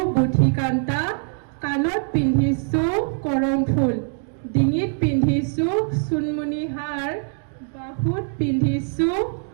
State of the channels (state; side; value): silent; left; 64 dB below the other